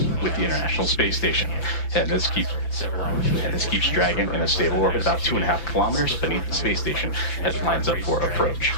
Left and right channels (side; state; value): right; late; 5.9 ms